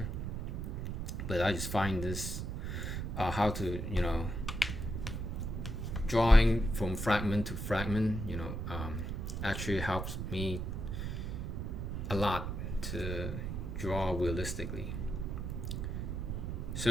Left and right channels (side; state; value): right; noise; rumble, 3 dB below the sound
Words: but I just find this how to, you know, drawing from fragment to fragment, you know, actually helps me a lot to draw realistically.